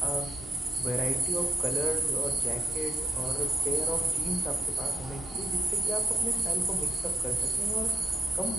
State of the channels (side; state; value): both; normal; correlation 0.80